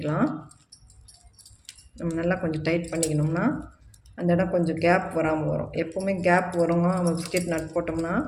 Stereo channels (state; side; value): identical; both; correlation 1.00